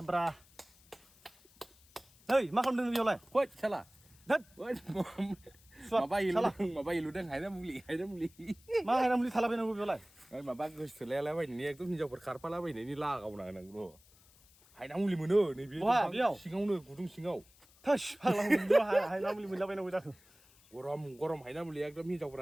bra hey mà không đừng biểu này Woi, salah. đất Woi, mà bay lu đang Haina Muli. mà hay làm gì thà là bên nào biểu này mà bác cứ xử lý lại vậy nè, tôi nhìn cho vật khát lại vậy nè, đi la gạo này bro. Haina Muli mà nữa, này biết. Sinh ngâu nữa, cụ tung sinh ngâu. thôi hàng làm mình biểu hay làm gì mình làm bên nào vậy Gorom Haina Muli ekdom nhìn cho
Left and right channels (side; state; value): left; noise; hiss, 27 dB below the sound